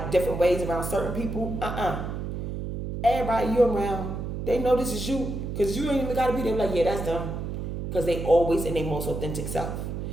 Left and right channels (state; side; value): noise; right; hum, 5 dB below the sound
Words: different ways around certain people. Everybody you around, they know this is you. Because you ain't even got to be there like, yeah, that's them. Because they always in their most authentic self.